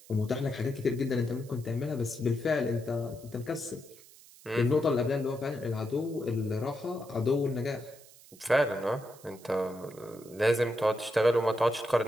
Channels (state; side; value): noise; right; hiss, 22 dB below the sound